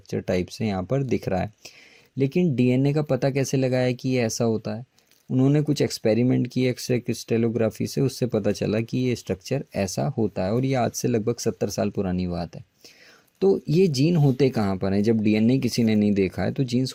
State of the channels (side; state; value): both; identical; correlation 1.00